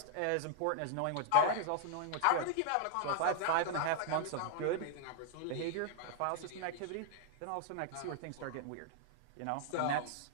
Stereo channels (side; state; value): both; different; correlation -0.01